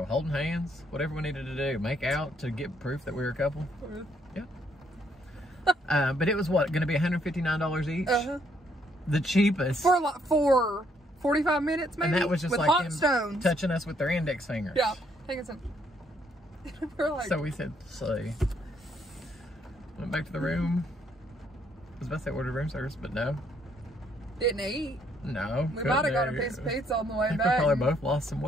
holding hands, whatever we needed to do, make out to get proof that we were a couple. Yeah. But it was what, going to be $159 each? The cheapest. For 45 minutes, maybe. And that was just with like hot them stones touching us with their index fingers. Yeah, taking some. We're like, so we said, see. Went back to the room. I was about to say ordered room service, but no. Didn't eat. No. We might have got a piece of pizza on the way back. We probably both lost some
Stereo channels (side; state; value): both; normal; correlation 0.70